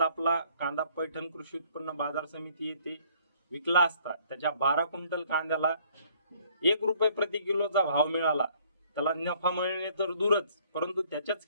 कांदा पैठण कृषी उत्पन्न बाजार समिती येथे विकला असता त्याच्या 12 क्विंटल कांद्याला 1 रुपये प्रति किलोचा भाव मिळाला। त्याला नफा मिळणे तर दूरच, परंतु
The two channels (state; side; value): inverted; both; correlation -0.61